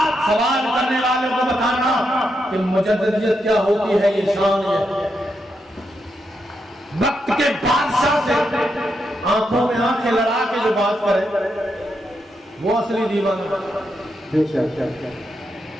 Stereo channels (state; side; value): normal; both; correlation 0.83